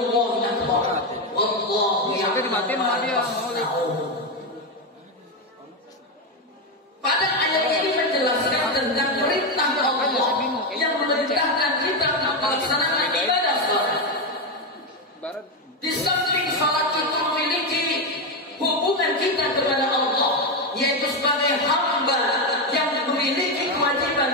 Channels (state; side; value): normal; both; correlation 0.09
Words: akbar. Wallahu ya'lamu ma tasna'un." Pada ayat ini menjelaskan tentang perintah Allah yang memerintahkan kita melaksanakan ibadah salat. Di samping salat itu memiliki hubungan kita kepada Allah, yaitu sebagai hamba yang memiliki